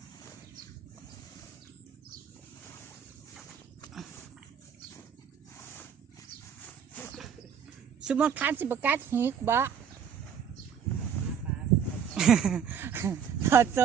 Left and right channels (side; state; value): left; quieter; 7.7 dB